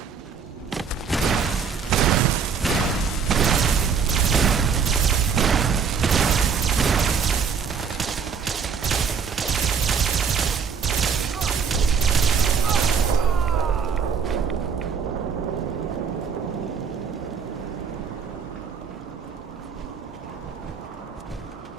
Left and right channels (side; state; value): left; quieter; 6.2 dB